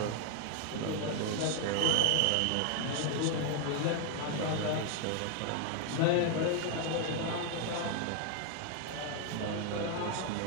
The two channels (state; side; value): different; both; correlation 0.00